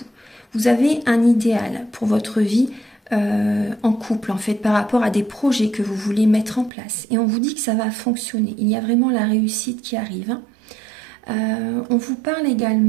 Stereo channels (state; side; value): drops out; left; at 6.7 s